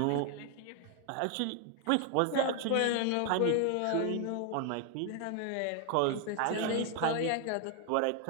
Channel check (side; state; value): both; different; correlation 0.01